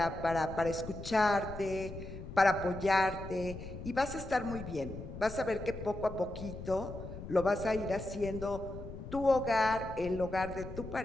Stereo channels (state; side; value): noise; left; rumble, 10 dB below the sound